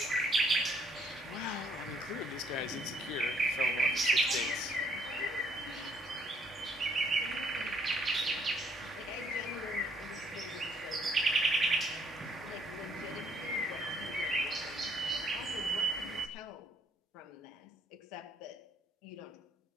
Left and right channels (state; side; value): normal; both; correlation 0.66